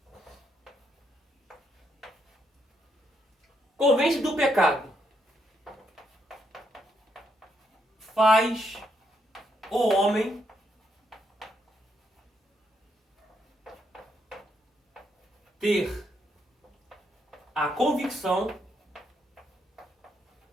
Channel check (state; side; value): normal; both; correlation 0.77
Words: Convence do pecado. Faz o homem ter a convicção